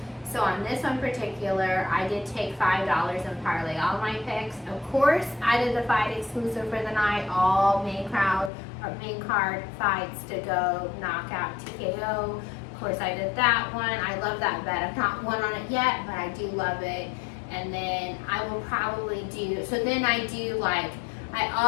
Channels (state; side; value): drops out; right; at 8.5 s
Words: So on this one particular, I did take $5 and parlay all my picks. Of course, I did the fight exclusive for the night, all main card fights to go knockout TKO. Of course, I did that one. I love that bet. I've not won on it yet, but I do love it. And then I will probably do, so then I do like, I